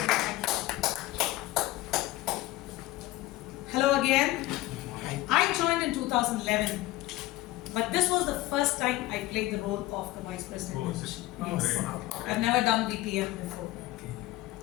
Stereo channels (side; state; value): right; quieter; 17.5 dB